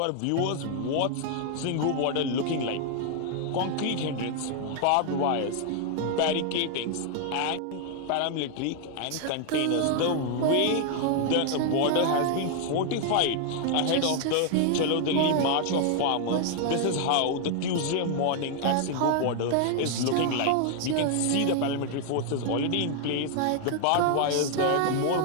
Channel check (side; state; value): both; different; correlation 0.00